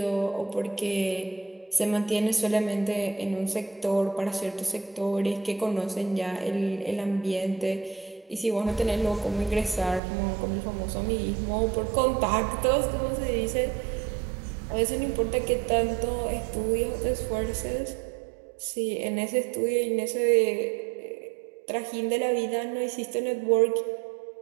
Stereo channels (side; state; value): left; drops out; at 10.0 s